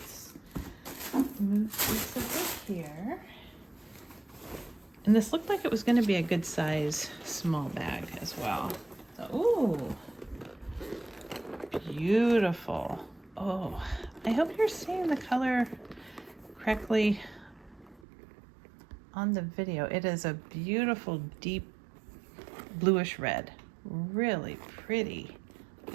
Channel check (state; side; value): drops out; left; at 18.0 s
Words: let's move this over here. And this looked like it was going to be a good size small bag as well. So, ooh, beautiful. Oh, I hope you're seeing the color correctly on the video. It is a beautiful deep bluish red. Really pretty.